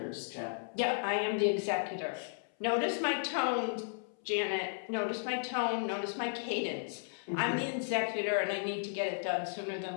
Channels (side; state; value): right; silent; 55 dB below the other